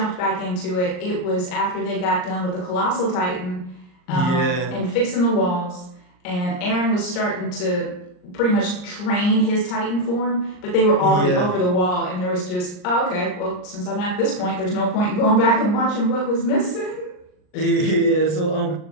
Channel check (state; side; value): late; right; 39 ms